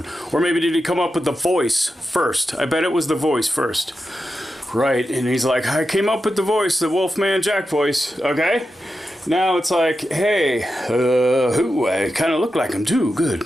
Or maybe did he come up with the voice first? I bet it was the voice first. Right, and he's like, I came up with the voice, the Wolfman Jack voice, okay? Now it's like, hey, I kind of look like him too. Good.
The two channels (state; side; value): normal; both; correlation 0.90